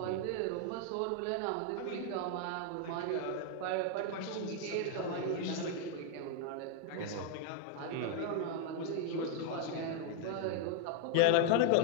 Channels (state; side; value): different; both; correlation 0.00